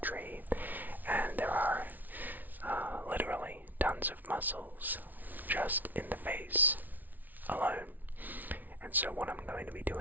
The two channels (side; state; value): left; late; 0.081 ms